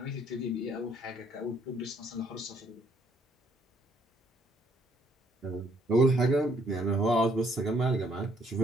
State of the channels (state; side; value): normal; both; correlation 0.67